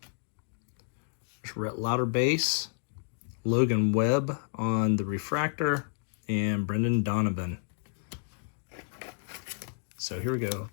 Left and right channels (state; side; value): silent; right; digital silence